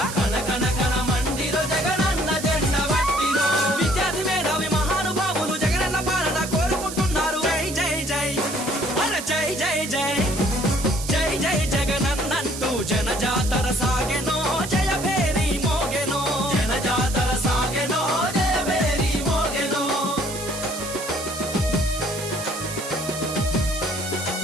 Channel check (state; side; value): noise; right; hiss, 9 dB below the sound